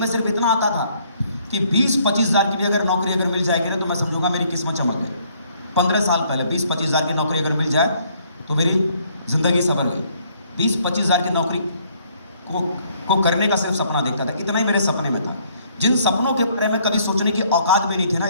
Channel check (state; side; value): inverted; both; correlation -0.66